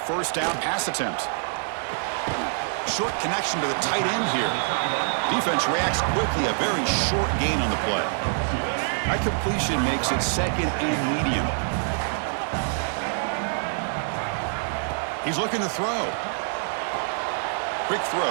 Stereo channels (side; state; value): left; silent; digital silence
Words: down pass attempt. Short connection to the tight end here. Defense reacts quickly. A very short gain on the play. That completion makes it 2nd and medium. He's looking to throw. Quick